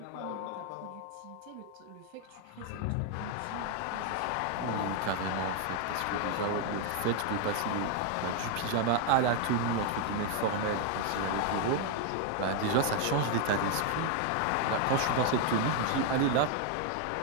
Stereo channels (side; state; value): both; different; correlation 0.00